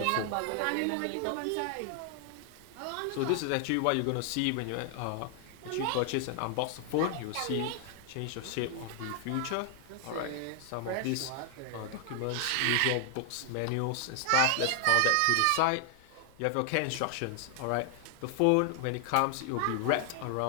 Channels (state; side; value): different; both; correlation 0.00